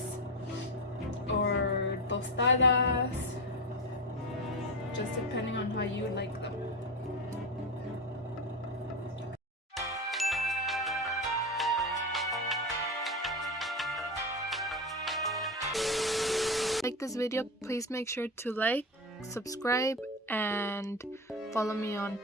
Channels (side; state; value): both; normal; correlation 0.19